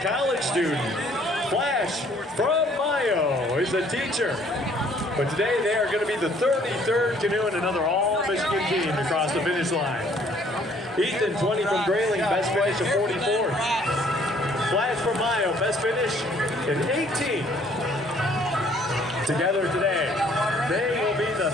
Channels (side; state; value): both; normal; correlation 0.61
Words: college student. Flash from Mayo is a teacher. But today they are going to be the 33rd canoe and another all-Michigan team to cross the finish line. Ethan, 20 from Grayling, best finish of 44th. Flash from Mayo, best finish in 18th. Together today, they will be the